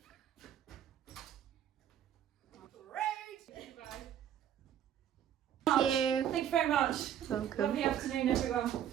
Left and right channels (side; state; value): left; quieter; 9.9 dB